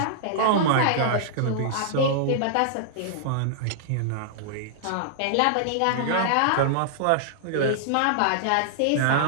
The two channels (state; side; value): different; both; correlation -0.01